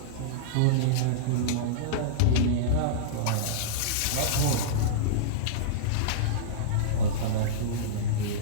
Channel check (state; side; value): different; both; correlation -0.03